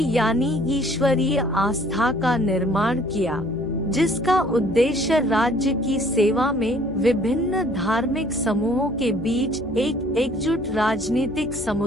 यानी ईश्वरीय आस्था का निर्माण किया, जिसका उद्देश्य राज्य की सेवा में विभिन्न धार्मिक समूहों के बीच एक एकजुट राजनीतिक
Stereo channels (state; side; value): noise; left; hum, 14 dB below the sound